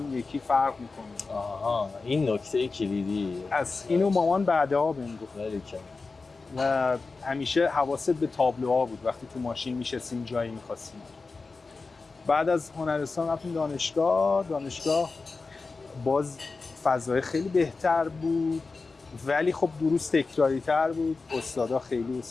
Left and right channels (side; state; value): right; quieter; 4.0 dB